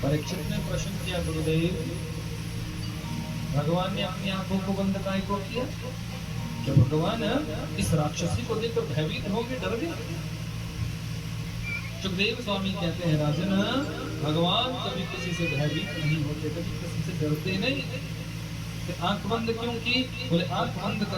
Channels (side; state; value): both; identical; correlation 1.00